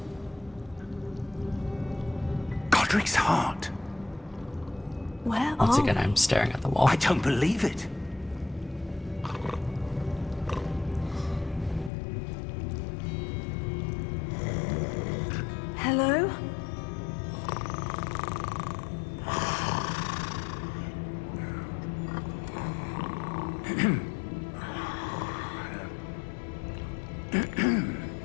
Godric's heart. Where Once are again, we? I'm staring at the wall. I don't believe it. Hello?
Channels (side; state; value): right; drops out; at 11.9 s